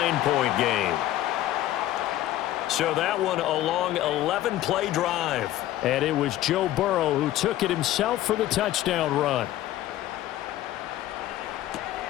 game. So that one a long 11-play drive. And it was Joe Burrow who took it himself for the touchdown run.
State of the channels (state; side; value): quieter; right; 14.0 dB